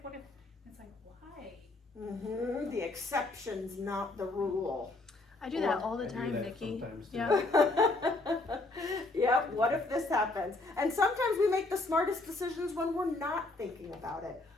what if? And it's like, why? Mm-hmm. The exception's not the rule. I do that all I the do time, that Nikki. sometimes, too. Yeah. Yep, what if this happens? And sometimes we make the smartest decisions when we're not thinking about it.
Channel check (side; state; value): right; quieter; 3.1 dB